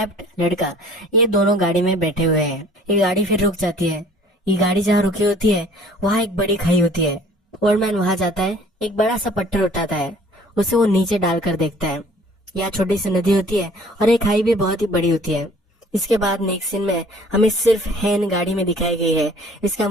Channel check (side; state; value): both; normal; correlation 0.52